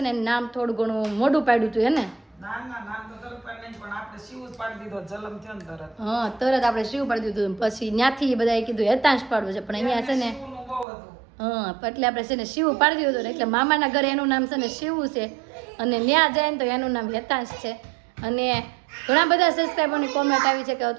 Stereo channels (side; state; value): left; drops out; at 10.9 s